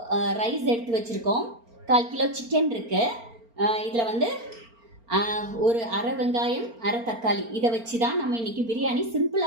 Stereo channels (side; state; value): left; late; 4.4 ms